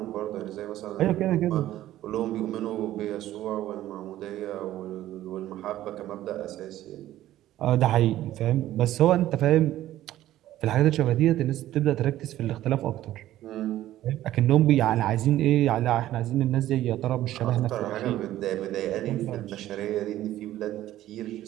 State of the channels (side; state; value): left; quieter; 13.9 dB